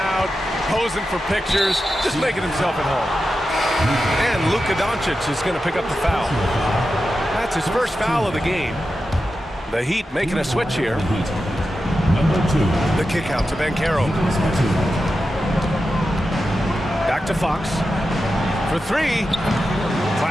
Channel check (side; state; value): both; normal; correlation 0.91